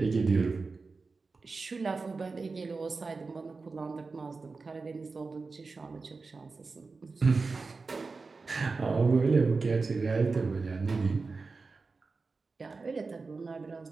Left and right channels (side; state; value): left; quieter; 4.2 dB